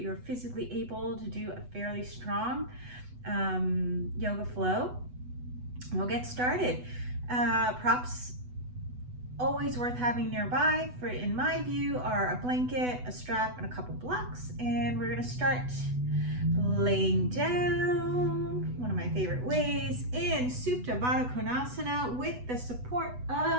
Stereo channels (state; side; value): late; left; 8.1 ms